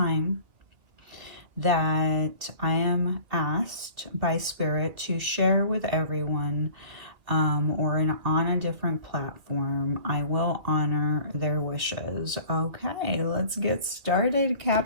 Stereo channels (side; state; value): left; late; 2.4 ms